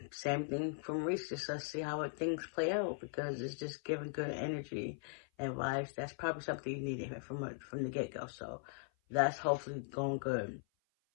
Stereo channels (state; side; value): silent; right; 51 dB below the other